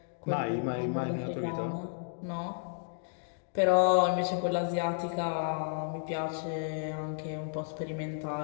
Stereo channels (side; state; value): right; silent; digital silence